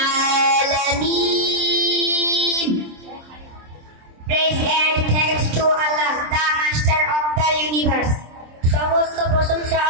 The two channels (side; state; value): left; late; 26 ms